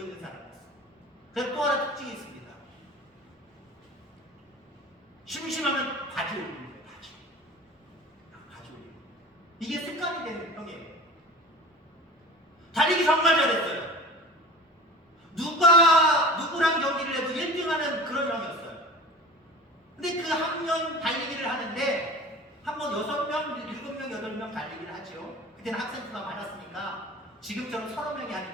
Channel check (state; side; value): normal; both; correlation 0.40